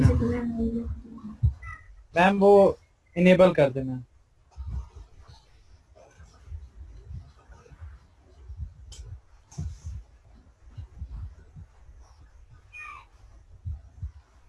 मैम वो इनेबल कर देना।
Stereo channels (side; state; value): both; identical; correlation 1.00